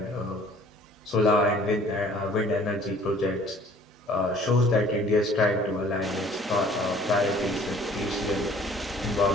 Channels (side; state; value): both; normal; correlation 0.54